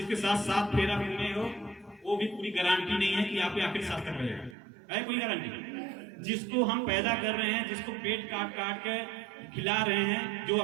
साथ 7 फेरा घूमे हो वो भी पूरी गारंटी नहीं है कि आपके आखिर साथ कर रहे हो, है कोई गारंटी? जिसको हम पैदा कर रहे हैं, जिसको पेट काट काट के खिला रहे हैं, जो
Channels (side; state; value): left; drops out; at 4.5 s